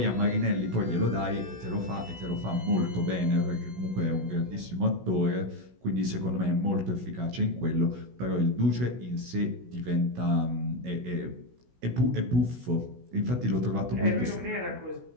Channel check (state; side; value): late; left; 16 ms